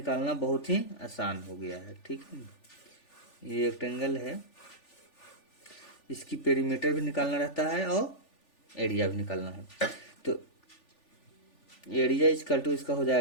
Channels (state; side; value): late; right; 3.4 ms